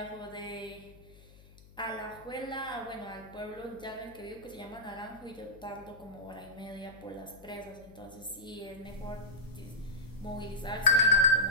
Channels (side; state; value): left; noise; hum, 22 dB below the sound